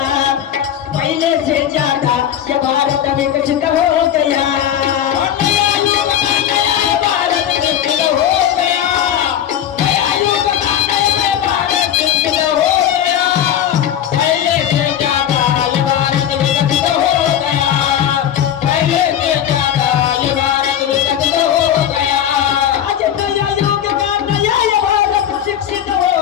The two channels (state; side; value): quieter; right; 10.1 dB